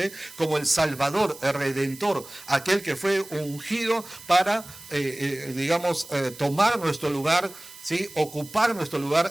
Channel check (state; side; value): noise; right; hiss, 18 dB below the sound